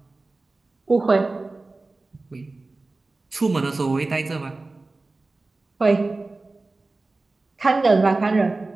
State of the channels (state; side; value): quieter; left; 3.3 dB